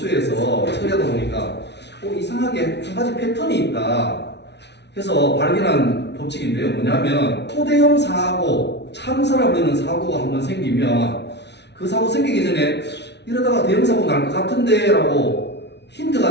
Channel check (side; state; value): right; late; 0.50 ms